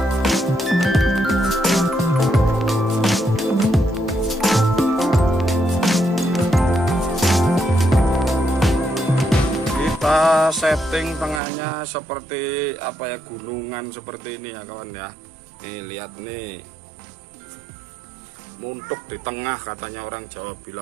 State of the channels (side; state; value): left; drops out; at 11.4 s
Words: Kita setting tengahnya seperti apa ya, gunungan seperti ini ya kawan ya. Nih lihat nih, muntuk di tengah katanya orang Jawa